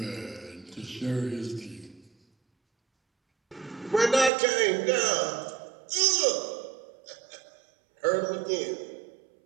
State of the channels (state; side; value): drops out; left; at 4.3 s